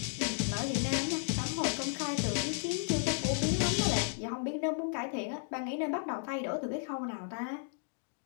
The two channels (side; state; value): right; silent; digital silence